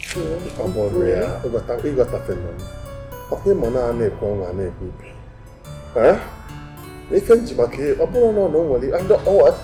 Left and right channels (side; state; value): both; identical; correlation 1.00